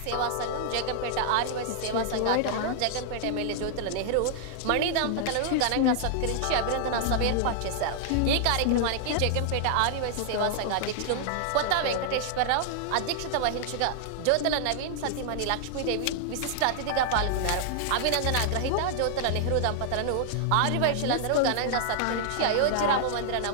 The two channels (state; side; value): different; both; correlation -0.01